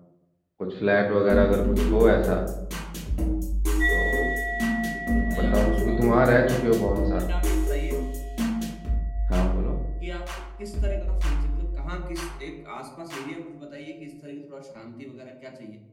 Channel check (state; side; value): identical; both; correlation 1.00